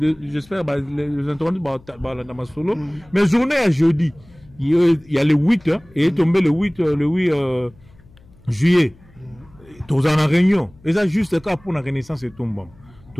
j'espère, les entendus dans ma solo. Mais journée à jeudi, il y a le 8, et tombé le 8 juillet. Tous en réunion. Et ça, juste le cas pour la Renaissance et Tombama.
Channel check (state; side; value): noise; left; hum, 27 dB below the sound